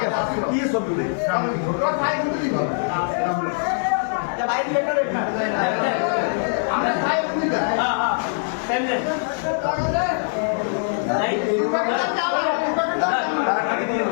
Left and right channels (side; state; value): right; silent; digital silence